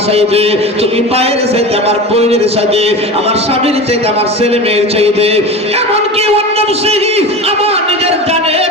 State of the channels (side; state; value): both; normal; correlation 0.30